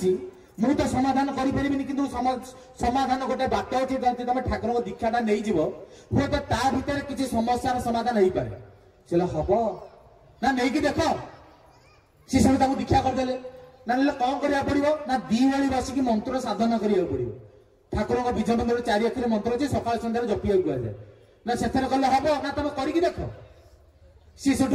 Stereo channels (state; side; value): identical; both; correlation 1.00